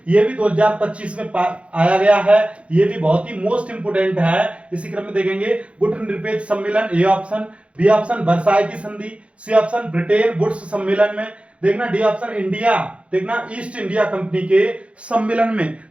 ये भी 2025 में आया गया है, ये भी बहुत ही मोस्ट इंपोर्टेंट है। इसी क्रम में देखेंगे गुटनिरपेक्ष सम्मेलन, A option, B option Versailles की संधि, सी ऑप्शन ब्रिटेन वुड्स सम्मेलन में, देखना डी ऑप्शन इंडिया, देखना ईस्ट इंडिया कंपनी के सम्मेलन में।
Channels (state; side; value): late; left; 0.061 ms